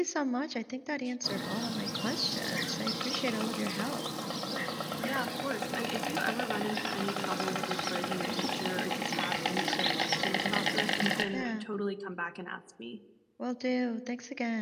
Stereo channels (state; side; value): identical; both; correlation 1.00